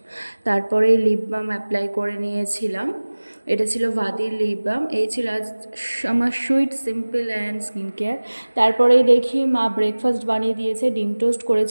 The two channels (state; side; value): inverted; both; correlation -1.00